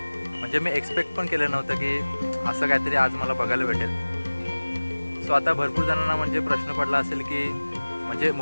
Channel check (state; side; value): inverted; both; correlation -1.00